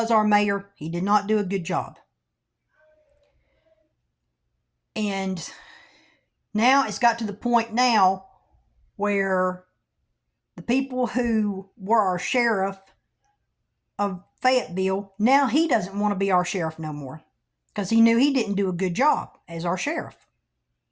our mayor, he did not do a good job. And now it's got to the point now where the people who were our sheriff of Fayetteville, now he doesn't want to be our sheriff no more. Because he knew he didn't do a good job as our sheriff.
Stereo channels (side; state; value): both; identical; correlation 1.00